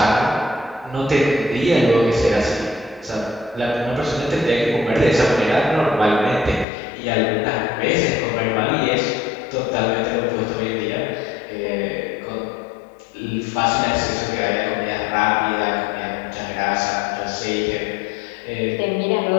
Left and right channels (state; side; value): drops out; right; at 6.7 s